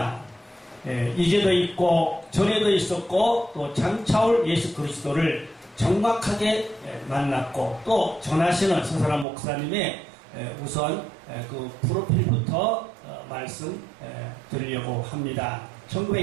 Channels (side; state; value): left; drops out; at 9.2 s